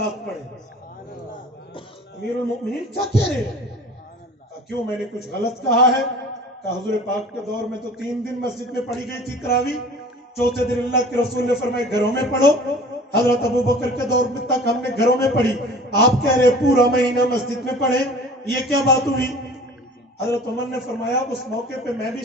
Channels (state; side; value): normal; both; correlation 0.44